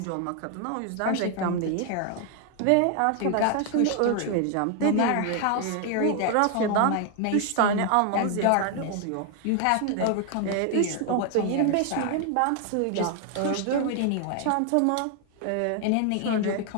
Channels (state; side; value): different; both; correlation 0.00